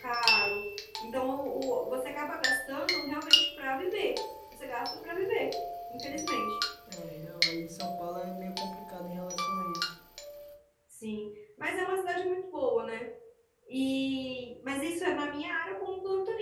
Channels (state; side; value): identical; both; correlation 1.00